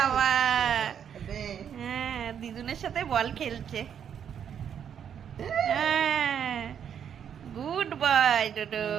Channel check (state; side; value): quieter; left; 8.4 dB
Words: হ্যাঁ দিদুনের সাথে বল খেলছে। হ্যাঁ, গুড বয় ডোডো।